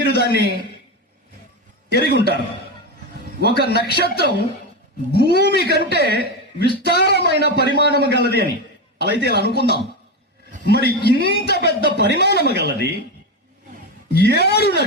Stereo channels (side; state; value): both; normal; correlation 0.15